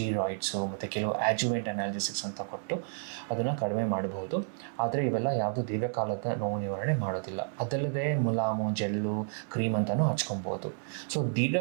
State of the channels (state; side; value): silent; left; 57 dB below the other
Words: ಮತ್ತು ಕೆಲವು ಆ್ಯಜುವೆಂಟ್ ಅನಾಲ್ಜೆಸಿಕ್ಸ್ ಅಂತ ಕೊಟ್ಟು ಅದನ್ನು ಕಡಿಮೆ ಮಾಡಬಹುದು. ಆದರೆ ಇವೆಲ್ಲ ಯಾವುದೂ ದೀರ್ಘಕಾಲದ ನೋವು ನಿವಾರಣೆ ಮಾಡೋದಿಲ್ಲ. ಅದಲ್ಲದೆ ಮುಲಾಮು, ಜೆಲ್ಲು, ಕ್ರೀಮ್ ಅಂತಲೂ ಹಚ್ಕೊಬೋದು.